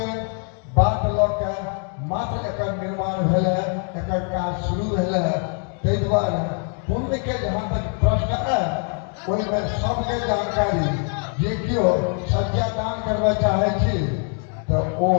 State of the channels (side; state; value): right; quieter; 39.5 dB